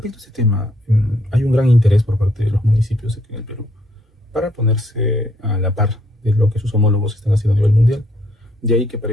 a este tema, hay un gran interés por parte de los municipios aquí en el Perú para ponerse a la par de lo que sus homólogos están haciendo a nivel mundial. De ahí que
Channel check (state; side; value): normal; both; correlation 0.69